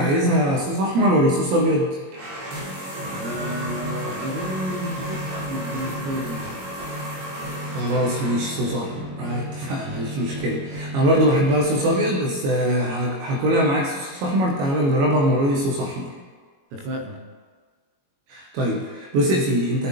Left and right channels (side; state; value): left; late; 22 ms